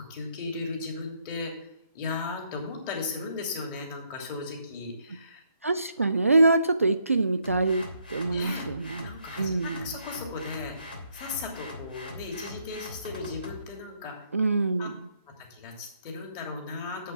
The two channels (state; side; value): inverted; both; correlation -0.74